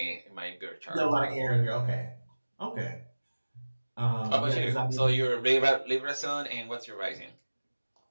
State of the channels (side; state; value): both; inverted; correlation -1.00